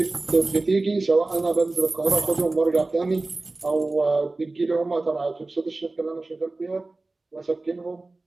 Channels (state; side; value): quieter; left; 3.2 dB